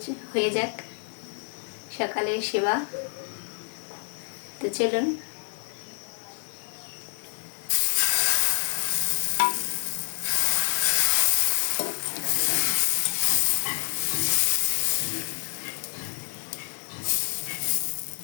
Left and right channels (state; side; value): silent; right; 57 dB below the other